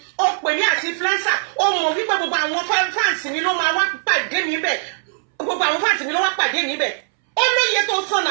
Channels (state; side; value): silent; left; 65 dB below the other